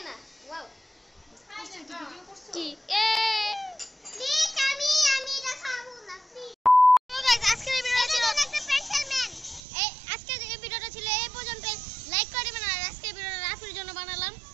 না? ওয়াও, কি এ প্লিজ আমি এটা খাবো না প্লিজ। তো গাইস, আজকের ভিডিওটা ছিল একটা স্পেশাল ম্যান। আজকের এই ভিডিওটা ছিল এই পর্যন্ত। লাইক করে দিবেন, আর আজকের ভিডিওটা রাফির জন্য বানালাম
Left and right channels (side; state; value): left; drops out; at 9.6 s